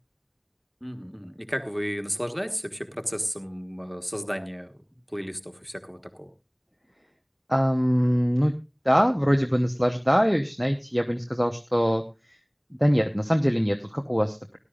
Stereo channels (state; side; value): identical; both; correlation 1.00